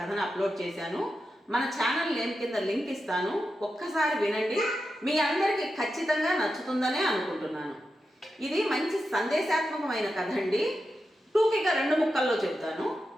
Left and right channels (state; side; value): normal; both; correlation 0.89